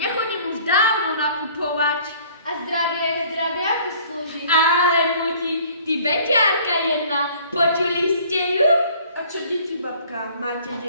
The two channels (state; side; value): inverted; both; correlation -0.53